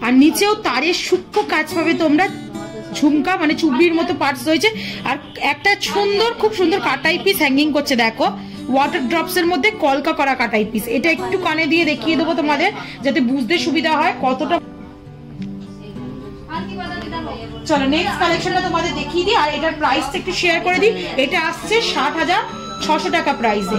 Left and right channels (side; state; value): both; identical; correlation 1.00